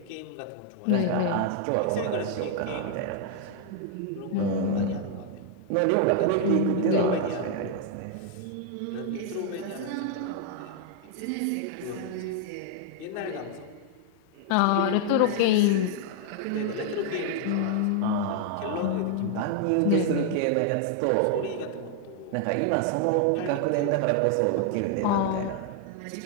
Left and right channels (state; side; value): different; both; correlation 0.00